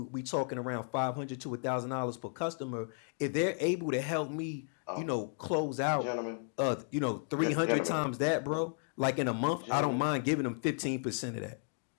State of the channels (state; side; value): silent; right; 55 dB below the other